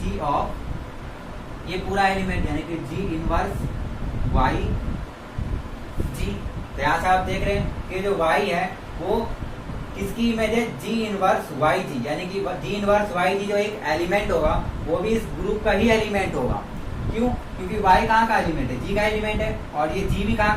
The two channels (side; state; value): both; identical; correlation 1.00